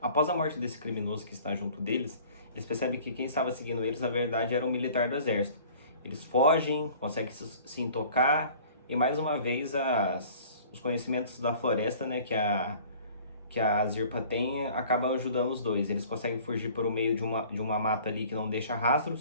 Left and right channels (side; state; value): both; inverted; correlation -0.49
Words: Após a morte desse criminoso que está junto deles, eles percebem que quem estava seguindo eles na verdade era um militar do exército. Eles fogem, conseguem se intocar e mais uma vez os conhecimentos da floresta, né, que a Zirpa tem, acabam ajudando os dois. Eles conseguem fugir por meio de uma mata ali que não deixa